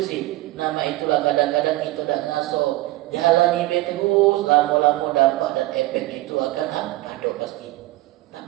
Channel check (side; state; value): left; quieter; 18.4 dB